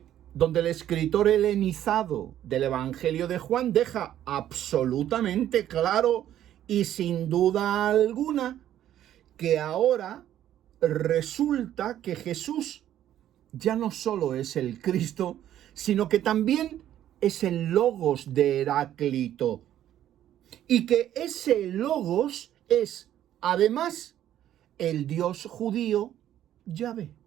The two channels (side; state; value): left; quieter; 11.7 dB